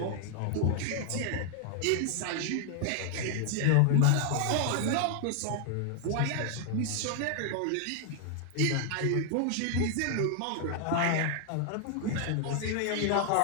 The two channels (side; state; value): both; different; correlation 0.00